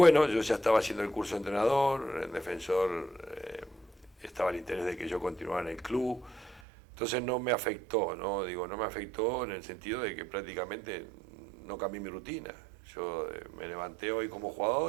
yo ya estaba haciendo el curso de entrenador, en defensor estaba el interés de que yo continuara en el club, entonces no me afectó, ¿no? Digo, no me afectó en el sentido de que prácticamente no cambié mi rutina. Yo me levanté hoy como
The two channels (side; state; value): left; drops out; at 6.6 s